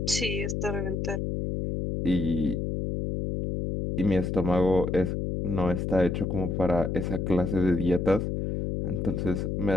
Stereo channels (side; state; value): left; noise; hum, 1 dB below the sound